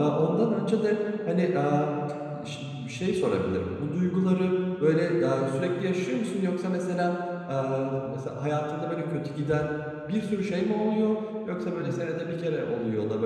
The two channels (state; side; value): identical; both; correlation 1.00